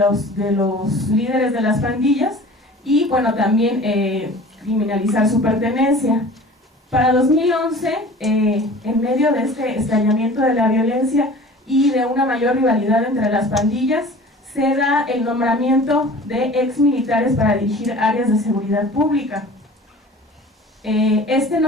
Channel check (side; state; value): both; normal; correlation 0.43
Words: líderes de las pandillas y bueno, también criminalizar su pertenencia. Para 2011, en medio de este estallamiento de la violencia y de una mayor rivalidad entre las pandillas, se da el nombramiento de exmilitares para dirigir áreas de seguridad pública. Este